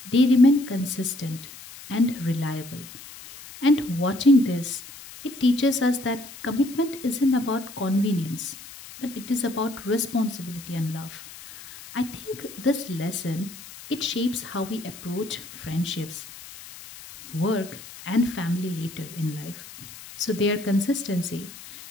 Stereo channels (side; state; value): left; noise; hiss, 16 dB below the sound